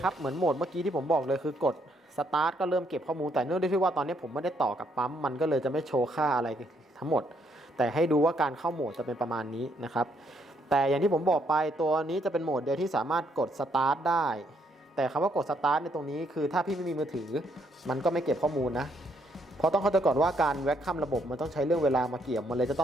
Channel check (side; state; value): both; normal; correlation 0.72